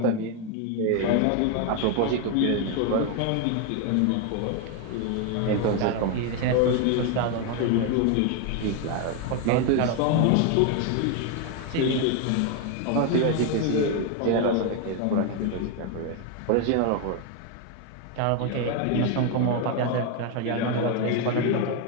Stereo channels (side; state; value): both; different; correlation 0.01